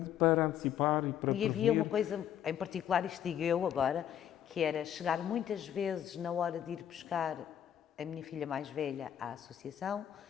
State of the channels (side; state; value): right; quieter; 10.1 dB